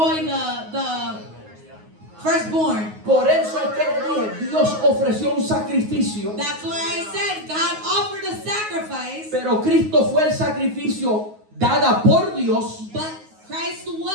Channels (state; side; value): late; left; 9.5 ms